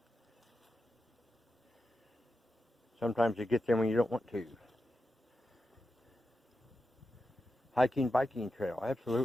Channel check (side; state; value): both; normal; correlation 0.89